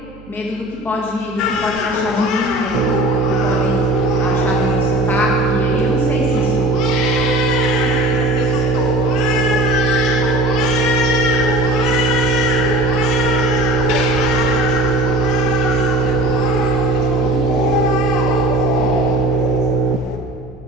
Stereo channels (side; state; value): right; noise; hum, 23 dB below the sound